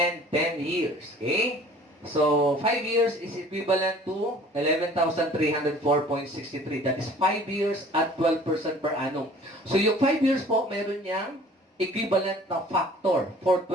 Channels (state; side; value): normal; both; correlation 0.50